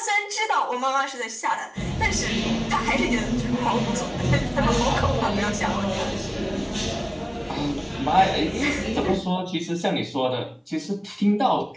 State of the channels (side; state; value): both; identical; correlation 1.00